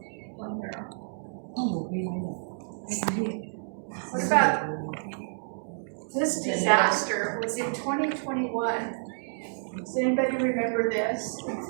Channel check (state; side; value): silent; left; digital silence